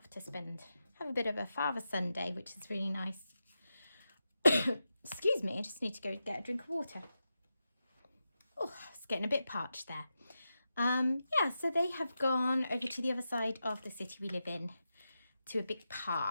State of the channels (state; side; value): inverted; both; correlation -0.89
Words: to have a bit of a father-son day, which is really nice. Excuse me, I just need to go get a drink of water. Oh, it's getting a bit parched there. Yeah, so they have gone over to the other side of the city we live in, to a big